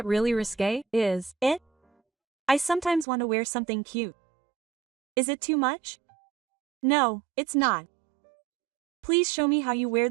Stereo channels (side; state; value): left; drops out; at 3.1 s